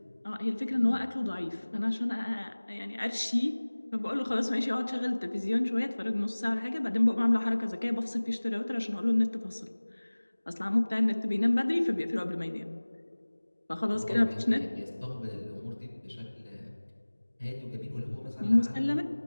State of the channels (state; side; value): inverted; both; correlation -1.00